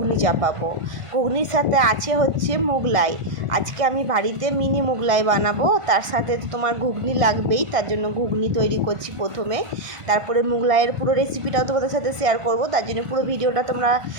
চাপাবো। ঘুগনির সাথে আছে হচ্ছে মোগলাই। আজকে আমি বাড়িতে মিনি মোগলাই বানাবো, তার সাথে তো তোমার ঘুগনি লাগবেই, তার জন্য ঘুগনি তৈরি করছি প্রথমে। তারপরে মোগলাইয়ের পুরো রেসিপিটাও তোমাদের সাথে শেয়ার করব, তার জন্য পুরো ভিডিওটা তোমরা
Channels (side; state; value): left; late; 1.5 ms